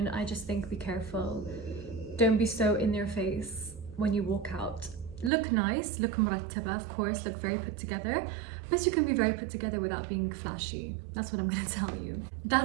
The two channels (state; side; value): drops out; left; at 5.3 s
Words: I just think be careful. Don't be so in their face when you walk out. Look nice, look murattaba, of course, look very put together. But you can be very put together without being flashy. That's what I'm going to tell you.